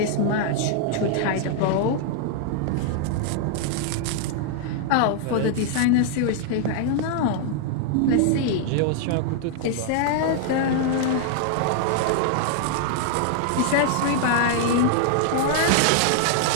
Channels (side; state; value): both; different; correlation 0.00